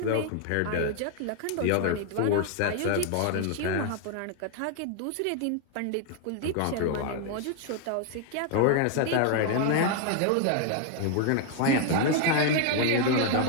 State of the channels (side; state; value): both; different; correlation 0.00